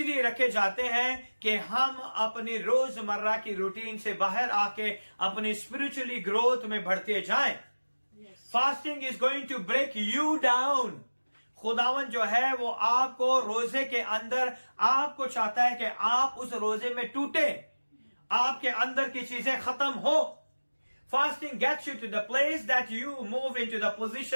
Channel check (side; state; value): both; inverted; correlation -1.00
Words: रखे जाते हैं कि हम अपनी रोजमर्रा की रूटीन से बाहर आके अपनी स्पिरिचुअली ग्रोथ में बढ़ते जाएं। Fasting is going to break you down. खुदावन जो है वो आपको रोजे के अंदर, आपको चाहता है कि आप उस रोजे में टूटे, आपके अंदर की चीजें खत्म हो। Fasting gets you to the place that you move into the